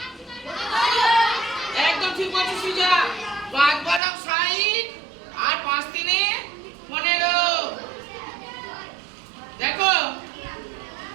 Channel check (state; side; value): drops out; left; at 4.0 s